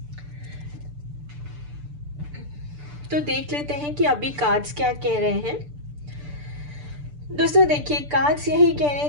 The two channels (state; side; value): late; left; 6.8 ms